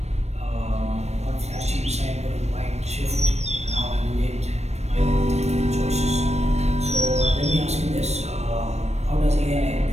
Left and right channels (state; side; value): late; left; 0.31 ms